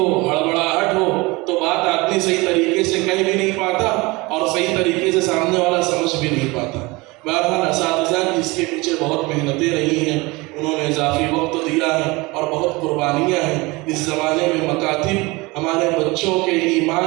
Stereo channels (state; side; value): quieter; left; 23.8 dB